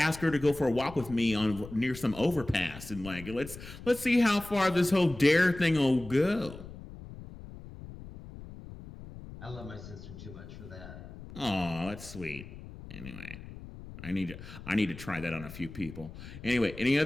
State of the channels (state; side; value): noise; left; rumble, 14 dB below the sound